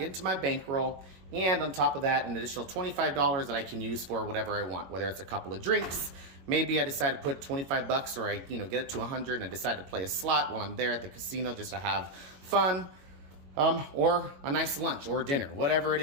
my bankroll. And on top of that, an additional $25 that I can use for whatever I want, whether it's a couple of drinks. Maybe I decide to put $25 or I get it to 100 and I decide to play a slot while I'm there at the casino just to have fun, or a nice lunch or dinner, whatever it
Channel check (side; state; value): left; late; 22 ms